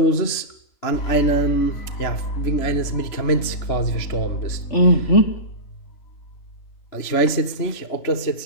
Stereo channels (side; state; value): right; late; 3.0 ms